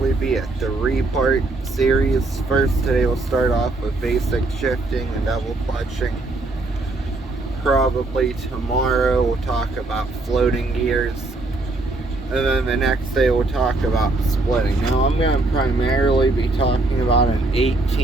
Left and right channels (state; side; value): quieter; left; 3.1 dB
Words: be a 3-part series. First, today we'll start off with basic shifting and double clutching. Probably tomorrow we'll talk about floating gears. And then the next day we'll talk about splitting. Now I'm going to primarily be talking about an